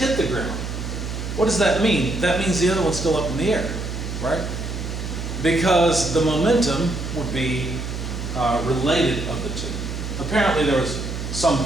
the ground. What does that mean? That means the other one's still up in the air, right? Because the momentum would be related of the two. Apparently there was some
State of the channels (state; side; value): noise; right; hum, 5 dB below the sound